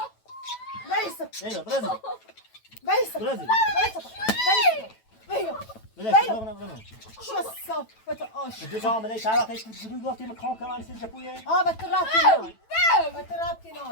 Vejsa. اینو برازیل Vejsa. برازیل Vejsa. چه صافت آش. دو تا عمله چند وقت شروع گفتیم کام کمان سیج پویه بترابتی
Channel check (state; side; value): late; right; 9.1 ms